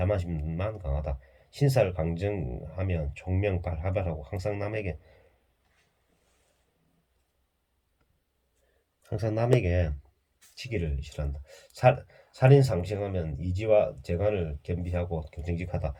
강하다. 신사를 강정하면 총명발하발하고 항상 남에게 항상 남에게 치기를 싫어한다. 살인 상승하면 이지와 재간을 겸비하고 정직하다.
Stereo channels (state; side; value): identical; both; correlation 1.00